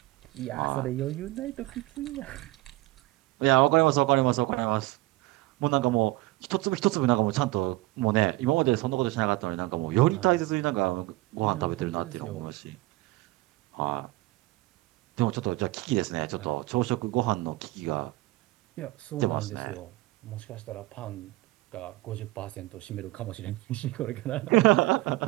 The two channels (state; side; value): quieter; left; 19.6 dB